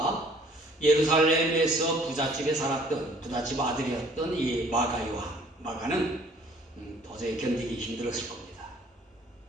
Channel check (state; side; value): normal; both; correlation 0.57